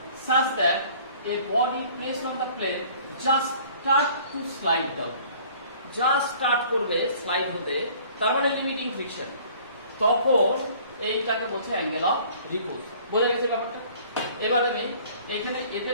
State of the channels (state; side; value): inverted; both; correlation -0.52